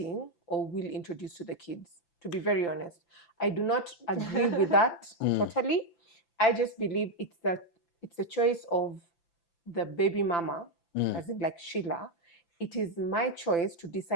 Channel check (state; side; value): late; right; 5.9 ms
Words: or will introduce to the kids. To be very honest, I do not agree with that totally. I just believe it's the choice of the baby mama, as in like Sheila. It is my choice to